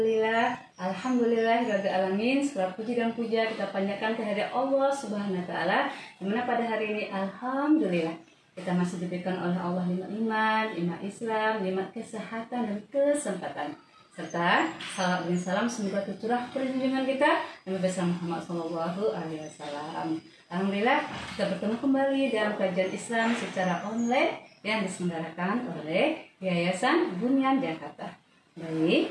alamin. Segala puji dan puja kita panjatkan kehadirat Allah Subhanahu wa taala. Dimana pada hari ini alhamdulillah kita masih diberikan oleh Allah nikmat iman, nikmat Islam, nikmat kesehatan dan kesempatan. Serta salam dan salam semoga tercurah perlindungan kita Nabi besar Muhammad SAW. Alhamdulillah kita bertemu kembali dalam kajian Islam secara online yang diselenggarakan oleh Yayasan Bunyan Jakarta.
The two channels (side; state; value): both; identical; correlation 1.00